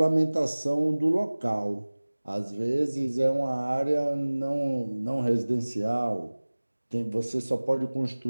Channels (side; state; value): both; inverted; correlation -1.00